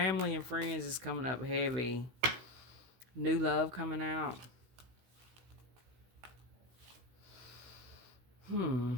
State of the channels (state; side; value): late; left; 16 ms